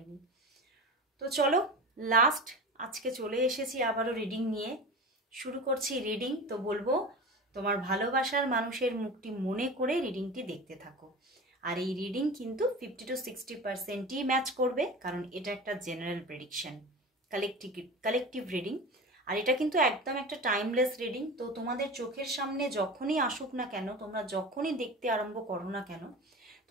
তো চলো, লাস্ট আজকে চলে এসেছি আবারও রিডিং নিয়ে। শুরু করছি রিডিং। তো বলবো তোমার ভালোবাসার মানুষের মুখটি মনে করে রিডিংটি দেখতে থাকো। আর এই রিডিং কিন্তু 50 to 60%ই ম্যাচ করবে, কারণ এটা একটা জেনারেল প্রেডিকশন, কালেকটিভ রিডিং। আর এটা কিন্তু একদম একটা টাইমলেস রিডিং। তো তোমাদের চোখের সামনে যখনই আসুক না কেন, তোমরা যখনই দেখতে আরম্ভ করো না কেন,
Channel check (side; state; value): both; normal; correlation 0.31